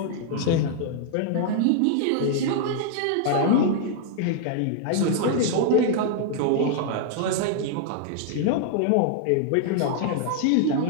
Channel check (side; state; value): both; different; correlation -0.01